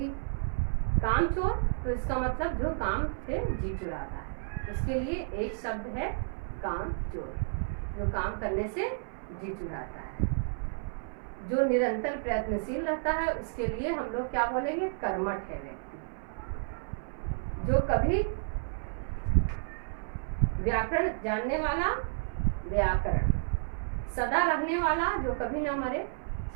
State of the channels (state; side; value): silent; left; 57 dB below the other